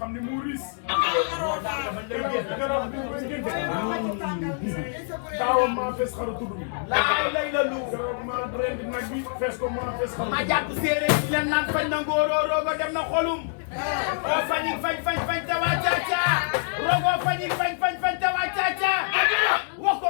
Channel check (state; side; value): silent; right; digital silence